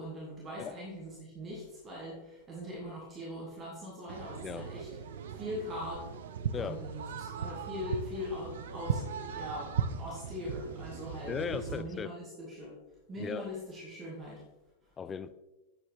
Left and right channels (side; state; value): both; normal; correlation -0.07